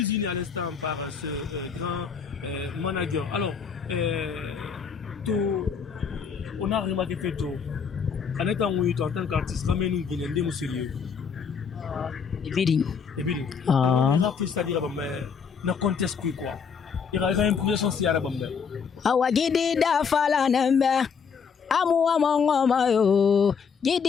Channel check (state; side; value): quieter; right; 6.2 dB